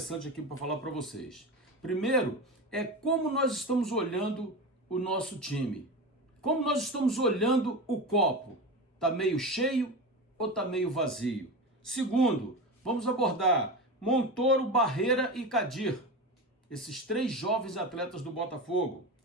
aqui para falar para vocês. Primeiro é como nós estamos olhando o nosso time, como nós estamos olhando o copo, tá meio cheio ou tá meio vazio? Segundo, vamos abordar Montoro, Barreira e Kadir, esses 3 jovens atletas do Botafogo.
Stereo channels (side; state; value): both; normal; correlation 0.24